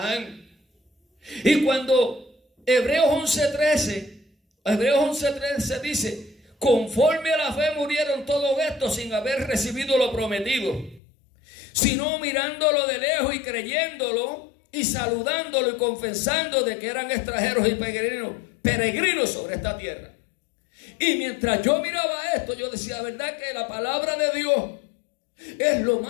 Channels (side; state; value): right; drops out; at 11.0 s